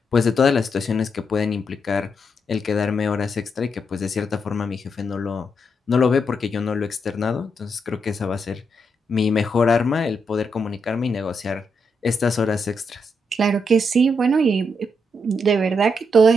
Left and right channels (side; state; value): both; normal; correlation 0.80